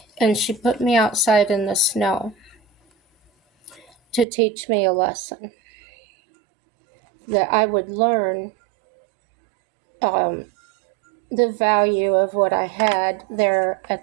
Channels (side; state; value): left; drops out; at 4.2 s